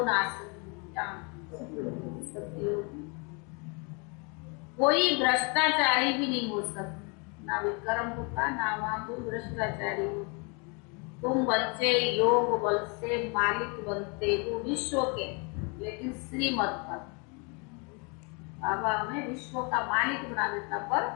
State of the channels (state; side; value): quieter; right; 33.4 dB